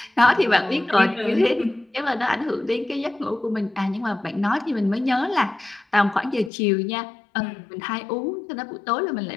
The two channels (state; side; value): drops out; right; at 6.5 s